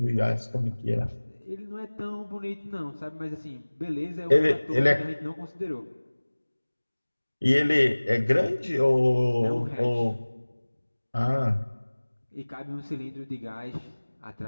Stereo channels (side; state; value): both; inverted; correlation -1.00